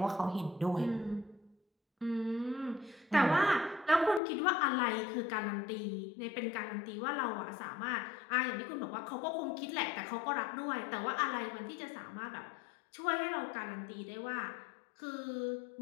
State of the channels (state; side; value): drops out; right; at 4.2 s